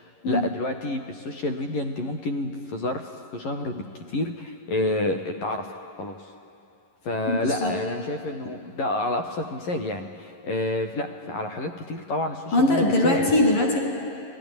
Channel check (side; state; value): right; late; 11 ms